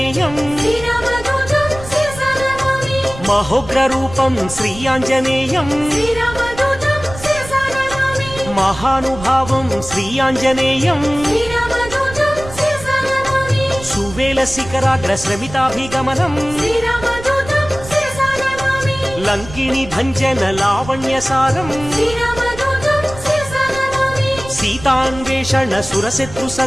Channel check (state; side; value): noise; right; rumble, 14 dB below the sound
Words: మహోగ్రరూపం శ్రీ ఆంజనేయం మహానుభావం శ్రీ ఆంజనేయం సువేల శిఖరాగ్ర శ్రమితాభిగమనం లంకిని భంజన లావణ్యసారం సీతాన్వేషణ సురశత్రు